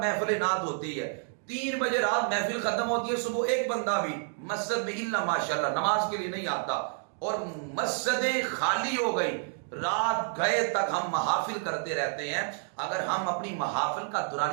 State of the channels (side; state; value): left; silent; 58 dB below the other